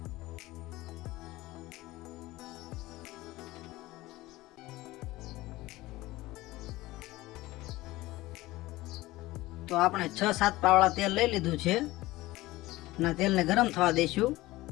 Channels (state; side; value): quieter; right; 18.6 dB